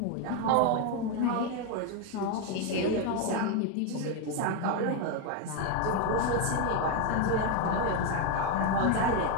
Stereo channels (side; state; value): both; different; correlation 0.02